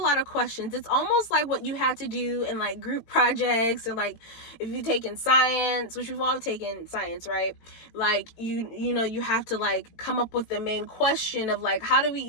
of questions. It's almost like what you had to do in like group projects, and like if you've taken science, which we've all taken science, right? Like you know, you have to like come up with the main question of like, how do we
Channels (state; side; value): late; right; 18 ms